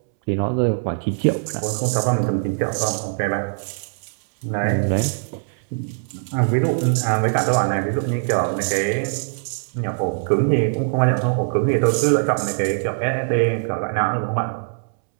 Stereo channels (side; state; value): left; silent; 64 dB below the other